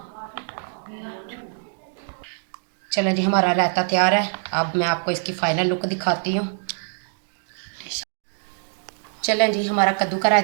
चलो जी, हमारा रायता तैयार है। अब मैं आपको इसकी फाइनल लुक दिखाती हूँ। चलें जी, हमारा कद्दू का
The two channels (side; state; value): left; silent; 63 dB below the other